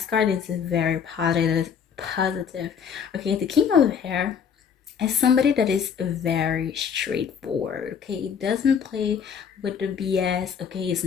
card is very positive. Okay, the King of Hair is somebody that is very straightforward. Okay, doesn't play with the BS. Okay, is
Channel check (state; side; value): quieter; right; 7.2 dB